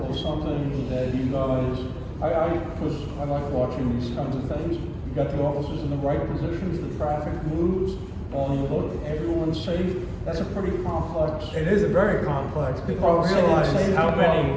of something that you guys, because I like watching these kinds of things. You got the officers in the right positions, the traffic moves, while you look, everyone's safe. That's a pretty complex. It is a very complex. People don't Safety realize how problem. many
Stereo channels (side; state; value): both; identical; correlation 1.00